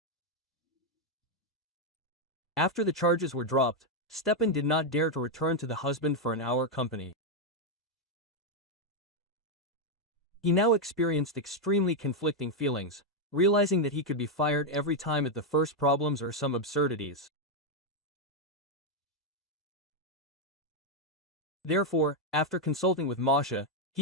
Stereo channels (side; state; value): both; normal; correlation 0.02